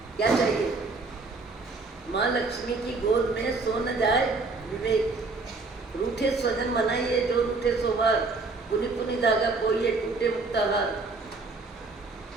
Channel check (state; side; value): quieter; left; 3.7 dB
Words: क्या चाहिए? माँ लक्ष्मी की गोद में सो न जाए विवेक। रूठे स्वजन मनाइए जो रूठे सोबार, पुनि पुनि धागा कोइए टूटे मुक्ताहार।